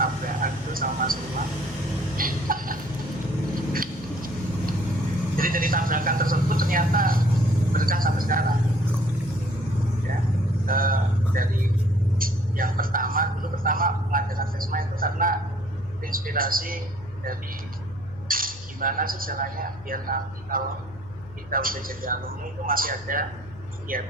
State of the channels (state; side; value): noise; left; hum, 19 dB below the sound